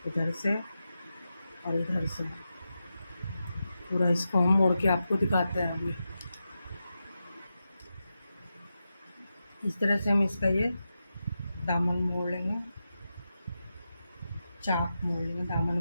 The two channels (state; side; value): inverted; both; correlation -0.90